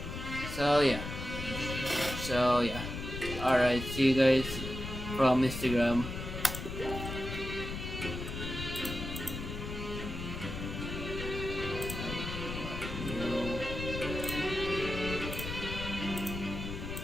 So yeah. Alright, see you guys from Instagram.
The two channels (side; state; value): left; noise; rumble, 6 dB below the sound